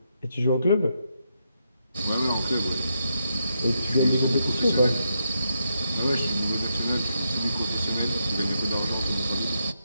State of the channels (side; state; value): both; inverted; correlation -0.81